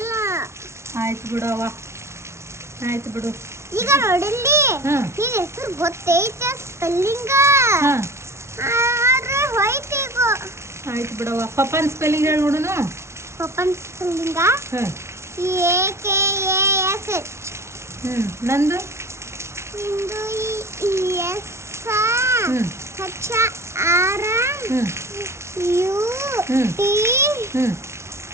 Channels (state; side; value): late; left; 0.13 ms